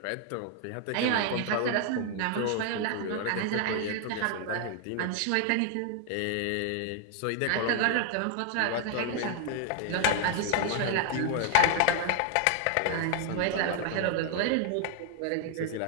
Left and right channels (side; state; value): both; different; correlation 0.00